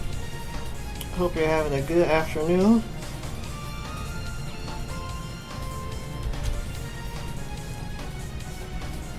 Hope you're having a good afternoon.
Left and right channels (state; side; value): identical; both; correlation 1.00